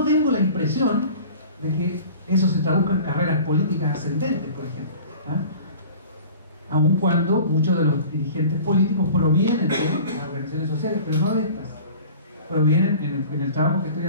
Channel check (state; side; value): inverted; both; correlation -0.43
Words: tengo la impresión de que eso se traduzca en carreras políticas ascendentes, por ejemplo. Aun cuando muchos de los dirigentes políticos provienen de las organizaciones sociales, pero no de estas. Provienen en el trabajo que estoy